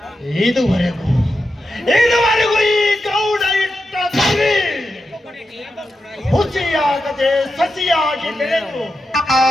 ಇದುವರೆಗೂ ಈ ಗೌಡ ಇಟ್ಟ ಸರಿ ಹುಸಿಯಾಗದೆ ಸಸಿಯಾಗಿ ಬೆಳೆದು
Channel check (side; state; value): both; normal; correlation 0.89